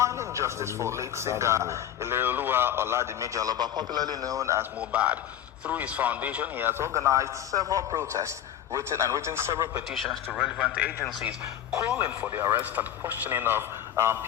justice for late singer Ileoluwa Oladimeji Aloba, popularly known as Mohbad. Through his foundation, he has organized several protests, written several petitions to relevant agencies, calling for the arrest and questioning of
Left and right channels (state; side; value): quieter; right; 11.0 dB